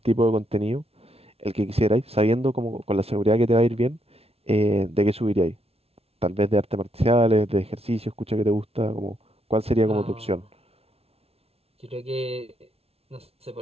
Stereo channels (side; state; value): left; late; 0.29 ms